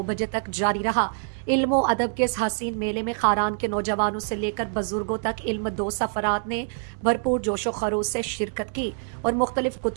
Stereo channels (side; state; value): left; silent; digital silence